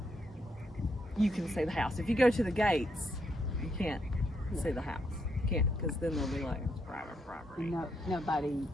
you can see the house. If you go to the gates, you can't see the house. You can't, because then they'll be like, it's private property. No, nobody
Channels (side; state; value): both; normal; correlation 0.77